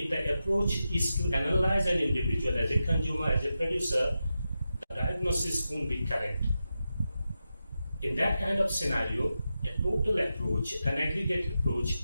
the approach is to analyze an individual as a consumer, as a producer, the diagnosis won't be correct. In that kind of scenario, a total approach, an aggregate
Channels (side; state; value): both; inverted; correlation -0.90